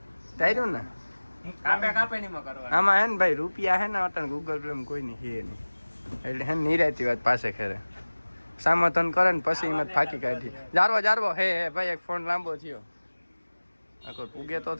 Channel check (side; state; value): both; inverted; correlation -1.00